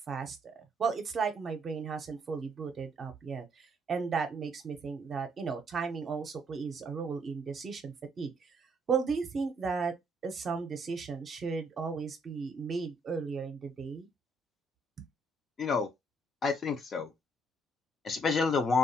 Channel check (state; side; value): normal; both; correlation 0.69